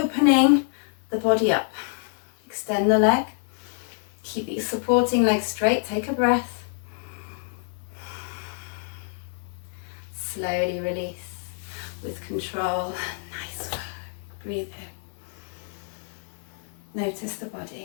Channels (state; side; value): silent; right; digital silence